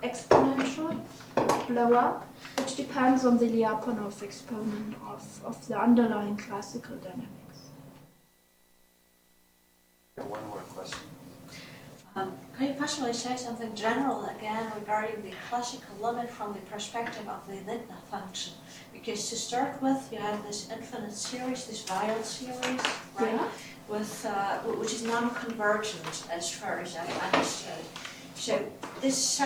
exponential blow up, which depends on the Lyapunov exponent of the underlying classical dynamics. One more question. Can you possibly say something general again regarding the classical limit from the perspective of the Lindner function? Because to start with, you have this infinite series, this Weyl series, right? Yeah. With which is non-convergent as far as I understood. So this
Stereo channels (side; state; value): both; identical; correlation 1.00